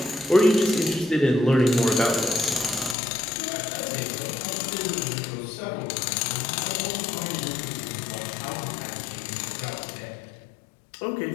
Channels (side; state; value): right; drops out; at 3.0 s